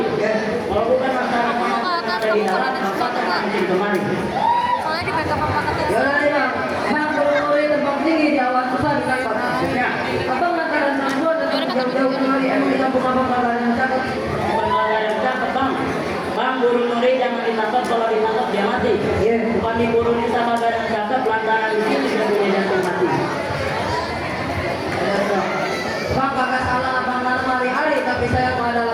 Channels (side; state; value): both; identical; correlation 1.00